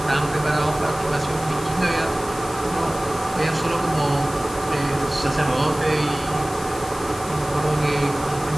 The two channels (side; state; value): left; noise; hiss, 16 dB below the sound